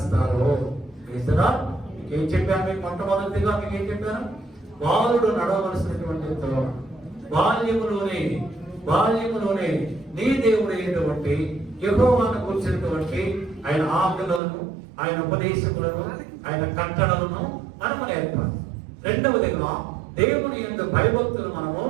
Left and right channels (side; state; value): left; drops out; at 14.4 s